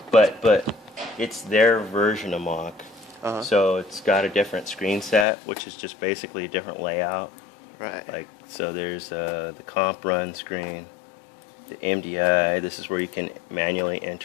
but it's their version of Mach. Uh-huh. So it's got a different screen set, which is just basically a different layout. Right. Like, so there's the comp run screen, the MDI. This is where you can manually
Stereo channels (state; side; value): drops out; right; at 5.2 s